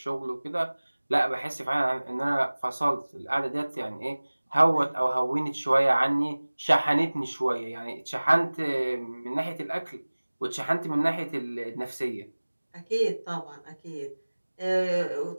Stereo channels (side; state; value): both; inverted; correlation -1.00